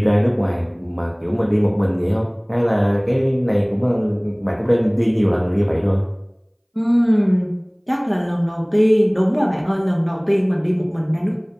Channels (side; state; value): both; identical; correlation 1.00